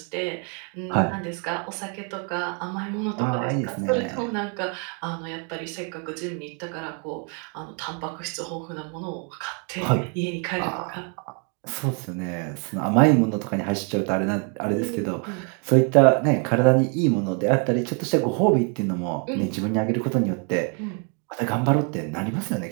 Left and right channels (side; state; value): left; quieter; 38.5 dB